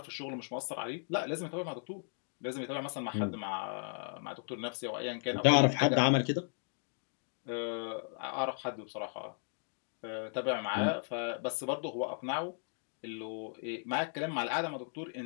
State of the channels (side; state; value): right; silent; 54 dB below the other